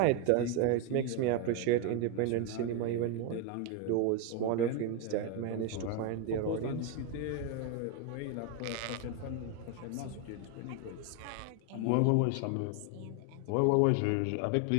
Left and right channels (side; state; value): both; different; correlation 0.01